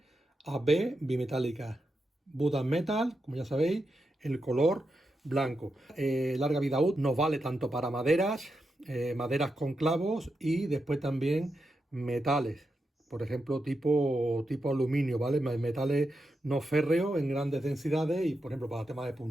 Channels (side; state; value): both; normal; correlation 0.87